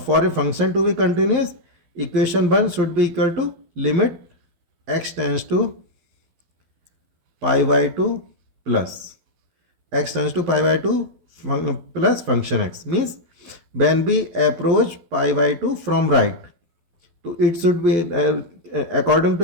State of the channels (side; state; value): left; late; 12 ms